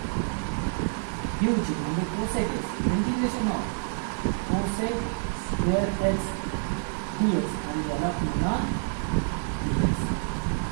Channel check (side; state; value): left; silent; digital silence